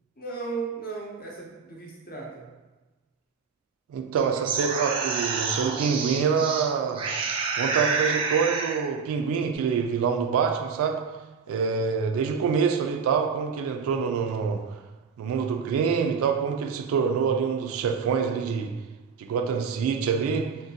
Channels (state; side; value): quieter; left; 5.7 dB